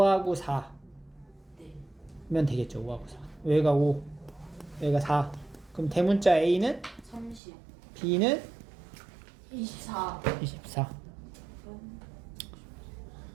4면 네. 되겠죠. 5하고 4. 얘가 5, 얘가 4. 그럼 대문자 A는 30. B는 24. 24.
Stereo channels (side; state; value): left; drops out; at 7.4 s